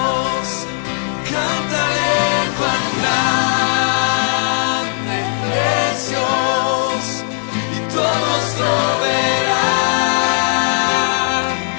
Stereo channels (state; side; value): silent; right; 68 dB below the other